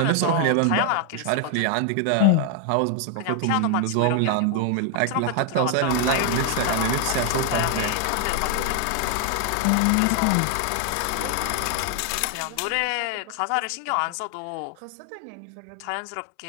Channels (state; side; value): different; both; correlation 0.00